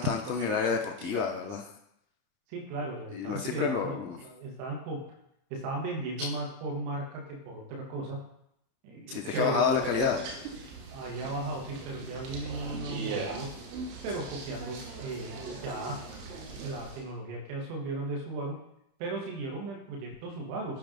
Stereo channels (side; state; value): left; late; 30 ms